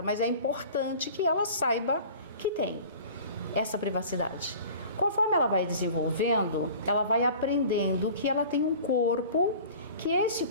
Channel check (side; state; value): both; inverted; correlation -0.43